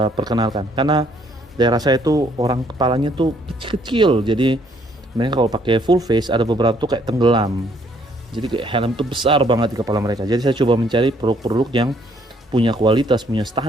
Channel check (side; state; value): both; normal; correlation 0.66